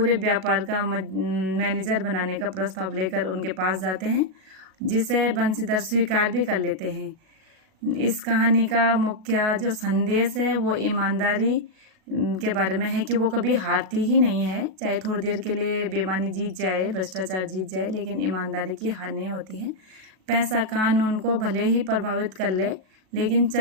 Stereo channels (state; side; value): late; left; 37 ms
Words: व्यापार का मैनेजर बनाने का प्रस्ताव लेकर उनके पास जाते हैं, जिसे बंसीधर स्वीकार भी कर लेते हैं। इस कहानी का मुख्य जो संदेश है वो ईमानदारी के बारे में है कि वो कभी हारती ही नहीं है। चाहे थोड़ी देर के लिए बेईमानी जीत जाए, भ्रष्टाचार जीत जाए, लेकिन ईमानदारी की हार नहीं होती है। पैसा कानून को भले ही प्रभावित कर ले, लेकिन